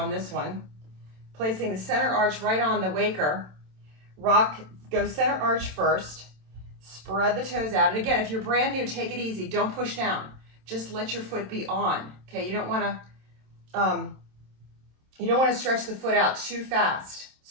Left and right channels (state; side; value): late; left; 27 ms